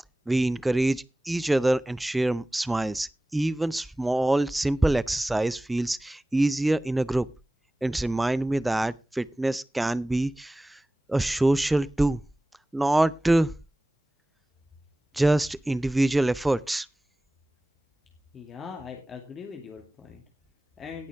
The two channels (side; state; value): both; normal; correlation 0.98